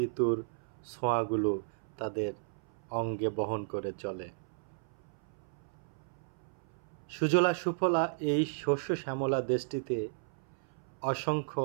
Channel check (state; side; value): silent; left; 55 dB below the other